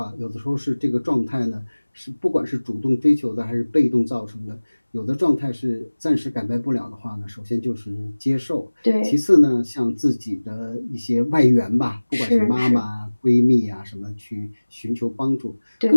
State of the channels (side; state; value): both; inverted; correlation -1.00